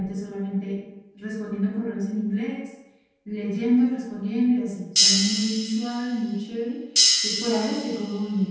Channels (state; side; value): identical; both; correlation 1.00